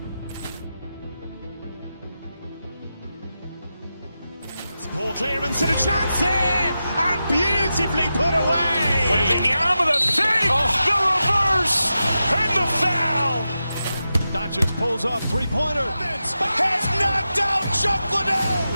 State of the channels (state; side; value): inverted; both; correlation -0.91